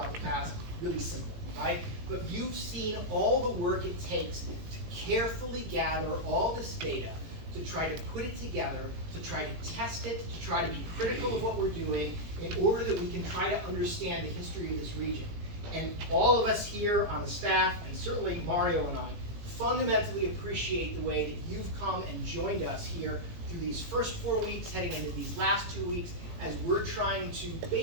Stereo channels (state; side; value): late; left; 18 ms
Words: the past, really simple, right? But you've seen all the work it takes to carefully gather all this data, to try to put it together, to try to test it, to try to be critical of what we're doing in order that we can try to understand the history of this region. And all of us here on the staff, and certainly Mario and I, fundamentally appreciate the way that you've come and joined us here through these first 4 weeks, heading into these last 2 weeks, as we're trying to